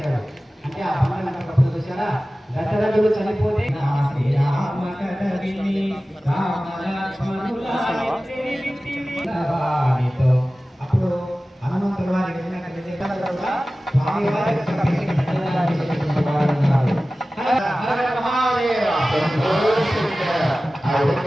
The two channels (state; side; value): normal; both; correlation 0.96